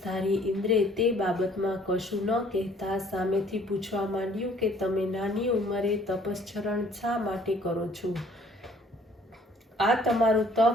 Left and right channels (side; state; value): both; normal; correlation 0.58